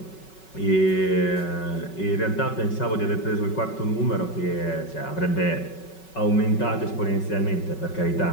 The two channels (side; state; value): right; late; 5.3 ms